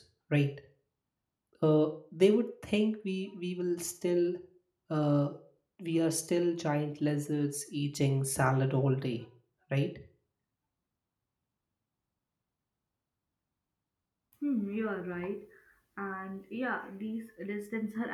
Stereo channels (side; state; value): both; identical; correlation 1.00